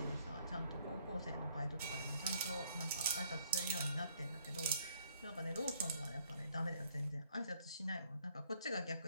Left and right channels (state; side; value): inverted; both; correlation -0.66